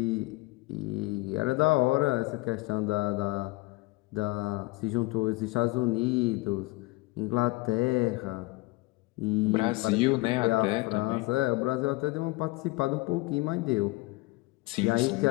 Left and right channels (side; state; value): right; quieter; 22.7 dB